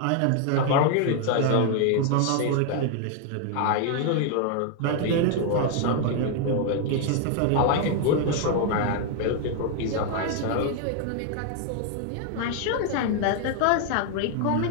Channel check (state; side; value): different; both; correlation 0.00